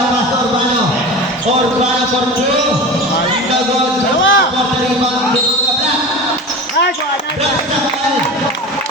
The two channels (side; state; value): both; normal; correlation 0.32